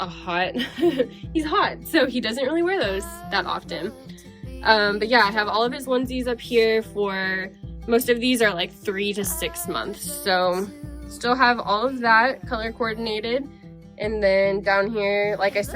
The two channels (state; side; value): identical; both; correlation 1.00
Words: he's hot. So he doesn't really wear those that often. But yeah, I have all of his onesies up here for, most of these are like 3 to 6 months. So still have all of that color coordinated. And then down here, like I